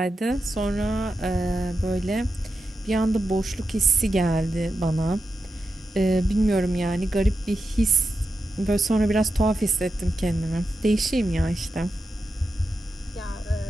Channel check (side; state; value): both; normal; correlation 0.89